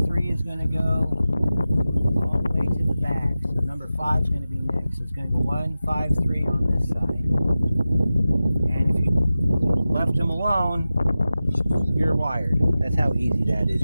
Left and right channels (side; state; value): both; inverted; correlation -0.94